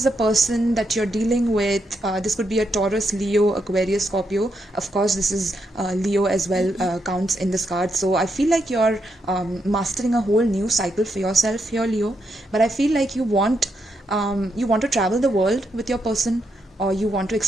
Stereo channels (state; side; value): normal; both; correlation 0.81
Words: a person that you're dealing with. This could be a Taurus, Leo, Aquarius, Scorpio. Of course, this is Leo as well, counts in this card. So I feel like you're mastering a whole new cycle for yourself here, Leo. But I feel like you want to travel the world with your person, or you want to